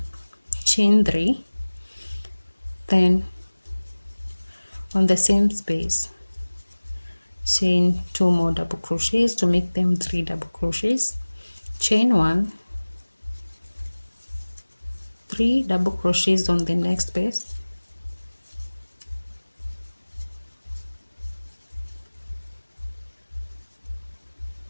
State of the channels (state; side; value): inverted; both; correlation -1.00